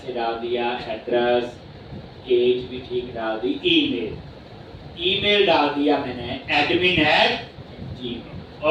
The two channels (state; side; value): identical; both; correlation 1.00